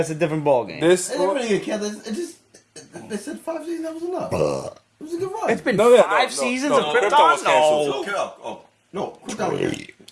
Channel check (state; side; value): identical; both; correlation 1.00